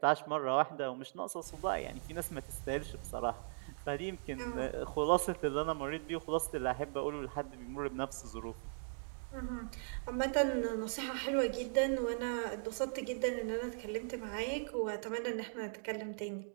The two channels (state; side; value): silent; left; digital silence